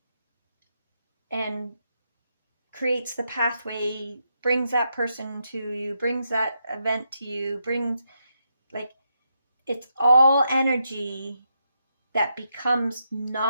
and creates the pathway, brings that person to you, brings that event to you, it's all energy that becomes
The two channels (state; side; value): inverted; both; correlation -0.82